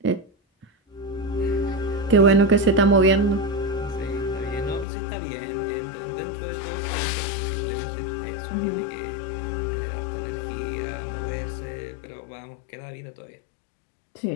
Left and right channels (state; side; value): drops out; right; at 4.9 s